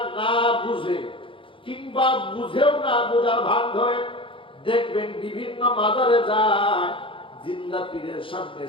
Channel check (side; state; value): right; late; 0.25 ms